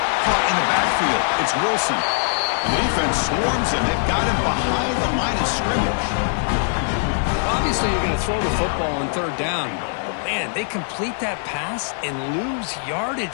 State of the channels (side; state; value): right; silent; 64 dB below the other